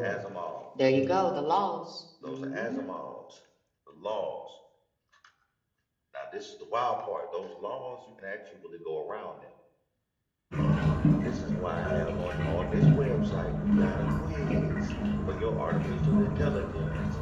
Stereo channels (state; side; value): identical; both; correlation 1.00